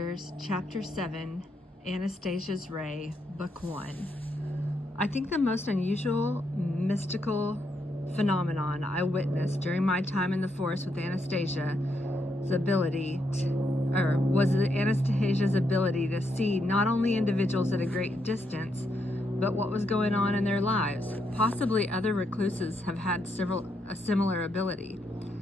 Chapter 7, Anastasia's Ray, Book 1. I think the most unusual mystical phenomenon I witnessed during my time in the forest with Anastasia was Anastasia's ability to see not only individuals at a great distance, but what was going on in their lives. Possibly other recluses have had a similar ability.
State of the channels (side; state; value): both; normal; correlation 0.79